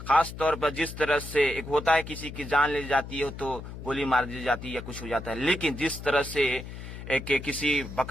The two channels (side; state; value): left; noise; hum, 11 dB below the sound